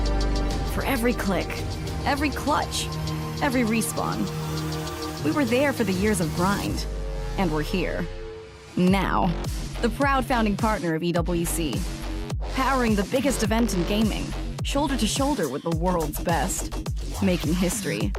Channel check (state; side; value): identical; both; correlation 1.00